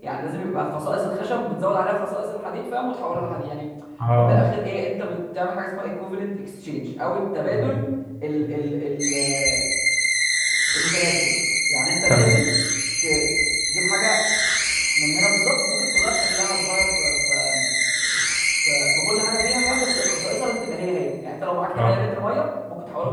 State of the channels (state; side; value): identical; both; correlation 1.00